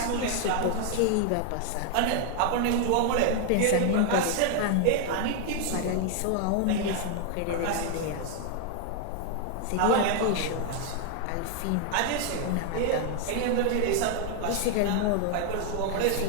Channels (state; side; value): different; both; correlation 0.00